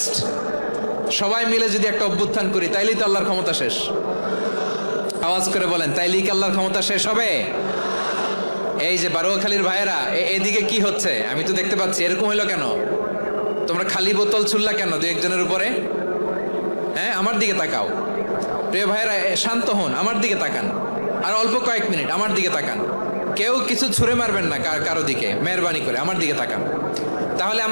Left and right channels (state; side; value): inverted; both; correlation -1.00